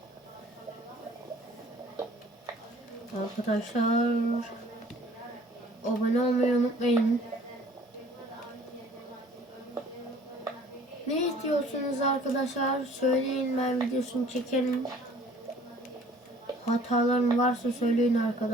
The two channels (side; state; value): both; normal; correlation 0.53